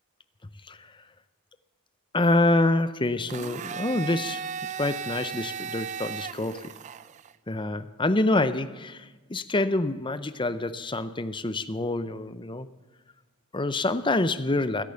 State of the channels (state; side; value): normal; both; correlation 0.55